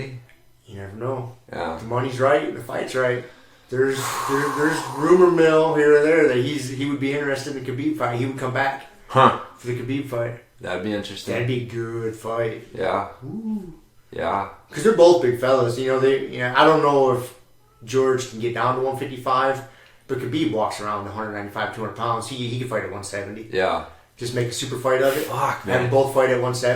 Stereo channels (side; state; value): both; identical; correlation 1.00